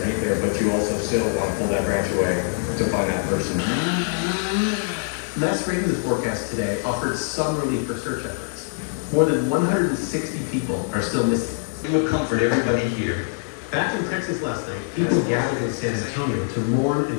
there, but you also still want to pull that branch away to find that person. Last Ravens forecast today offered some relief for search efforts. More than 160 people are still missing. It will comfort everybody here. Back in Texas last night, people gathered in San Antonio to mourn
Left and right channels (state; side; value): silent; right; digital silence